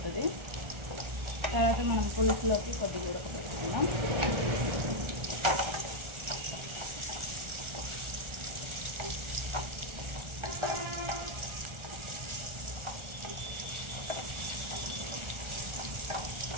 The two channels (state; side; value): late; left; 1.4 ms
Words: తర్వాత మనం పులుసులోకి కొద్దిగా ఉడకబెట్టుకుందాం.